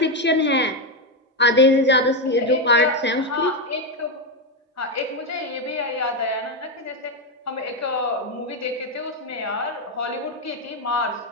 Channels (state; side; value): normal; both; correlation 0.07